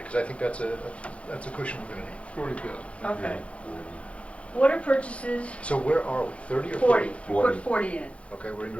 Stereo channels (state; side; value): late; right; 0.062 ms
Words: I think that's a cushion we're gonna need. 40,000. Okay. Water purchases, So where are we, 30 or 40, 40? put 40 in. Okay, we're in